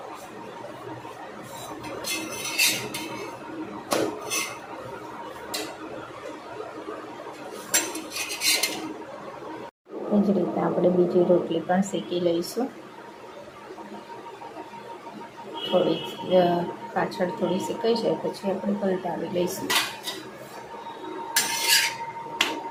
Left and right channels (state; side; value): identical; both; correlation 1.00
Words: એ જ રીતે આપણે બીજી રોટલી પણ શેકી લઈશું. થોડી પાછળ થોડી શેકાઈ જાય પછી આપણે પલટાવી લઈશું.